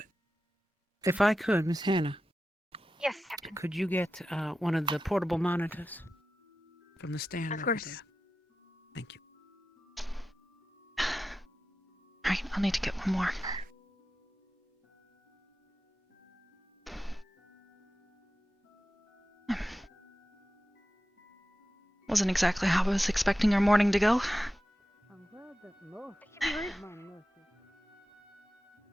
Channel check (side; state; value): both; normal; correlation 0.93